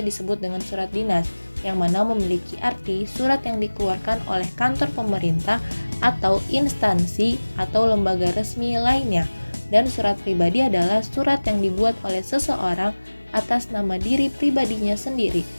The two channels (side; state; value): both; inverted; correlation -1.00